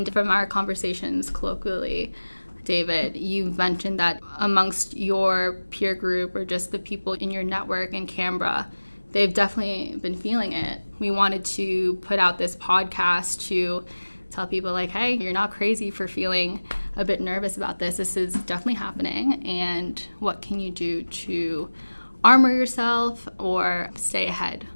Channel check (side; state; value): both; inverted; correlation -1.00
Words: from our conversations colloquially, David, you mentioned that amongst your peer group or just the people in your network in Canberra, they've definitely been feeling it. We wanted to put out this podcast to tell people like, hey, you're not crazy for feeling a bit nervous about this. This is definitely happening. And what can you do to armor yourself or stay ahead